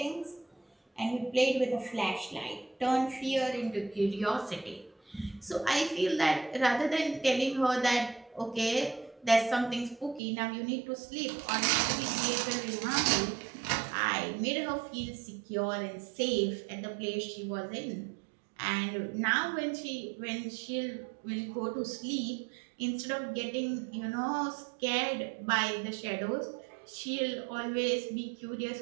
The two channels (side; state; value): left; drops out; at 10.2 s